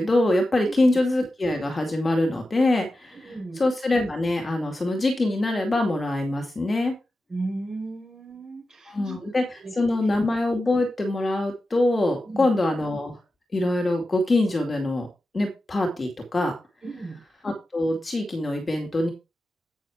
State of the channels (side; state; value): both; normal; correlation 0.92